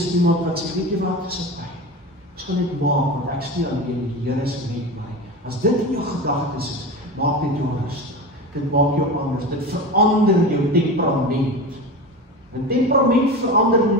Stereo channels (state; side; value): normal; both; correlation 0.27